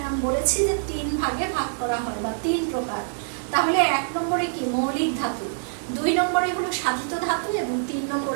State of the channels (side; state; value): left; silent; digital silence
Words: আমি বলেছি যে 3 ভাগে ভাগ করা হয় বা 3 প্রকার। তাহলে 1 নম্বরে কি? মৌলিক ধাতু, 2 নম্বরে হলো সাধিত ধাতু এবং 3